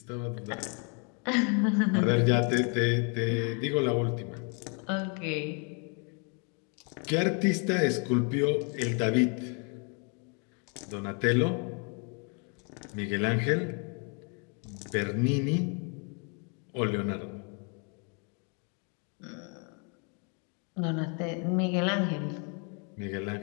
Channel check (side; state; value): right; quieter; 37.2 dB